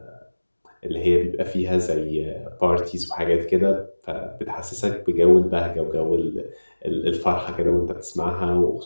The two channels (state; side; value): inverted; both; correlation -1.00